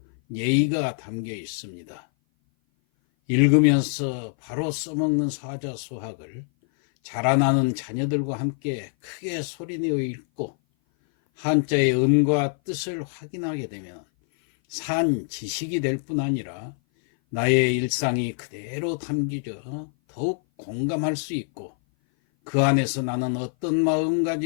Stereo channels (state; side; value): silent; right; 57 dB below the other